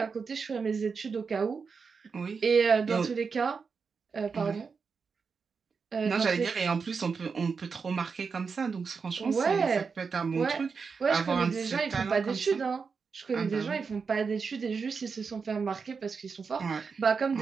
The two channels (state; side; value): quieter; left; 5.3 dB